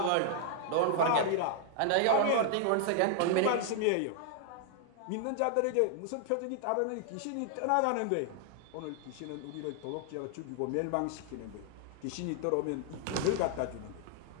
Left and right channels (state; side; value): different; both; correlation 0.00